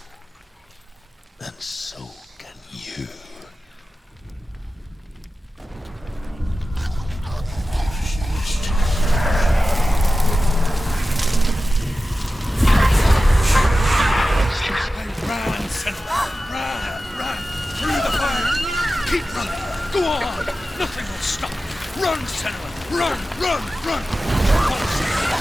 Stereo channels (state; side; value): normal; both; correlation 0.94